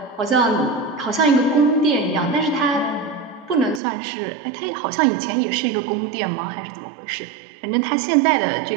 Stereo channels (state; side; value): drops out; left; at 3.8 s